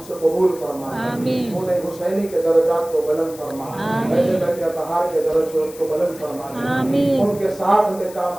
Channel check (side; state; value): left; noise; hiss, 18 dB below the sound